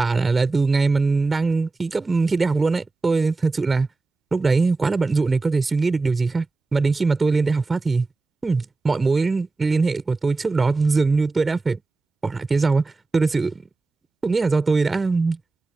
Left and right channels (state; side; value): quieter; left; 3.6 dB